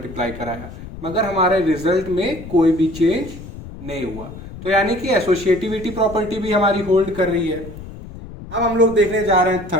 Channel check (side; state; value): left; noise; rumble, 13 dB below the sound